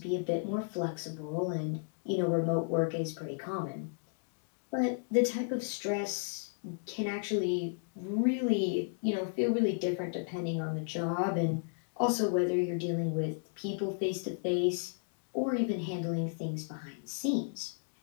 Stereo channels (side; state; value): right; silent; digital silence